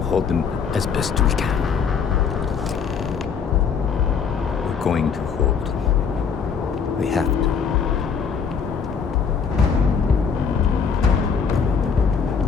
hold them as best we can. We're going to hold. We have to.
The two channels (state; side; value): quieter; right; 6.2 dB